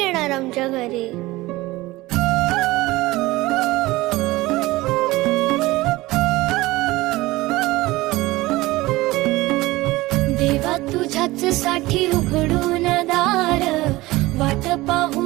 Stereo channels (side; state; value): left; quieter; 19.4 dB